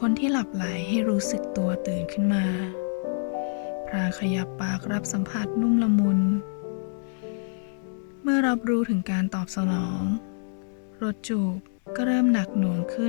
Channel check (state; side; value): silent; right; digital silence